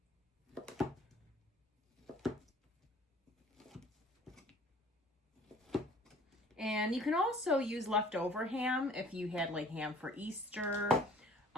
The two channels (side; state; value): both; normal; correlation 0.52